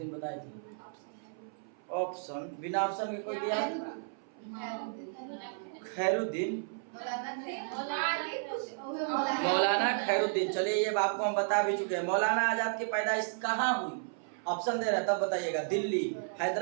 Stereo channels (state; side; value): silent; left; 56 dB below the other